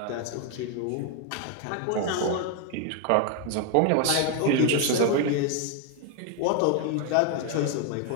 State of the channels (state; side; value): different; both; correlation 0.01